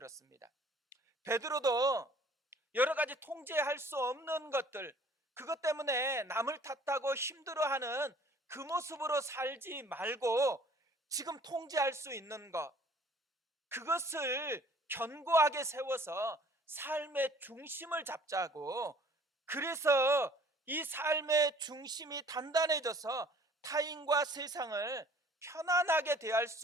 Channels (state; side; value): normal; both; correlation 0.54